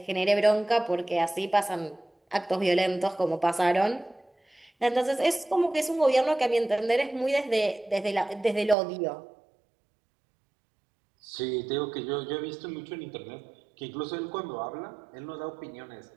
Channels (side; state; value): left; drops out; at 8.8 s